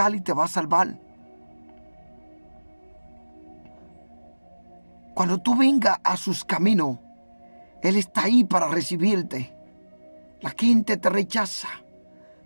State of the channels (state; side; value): inverted; both; correlation -1.00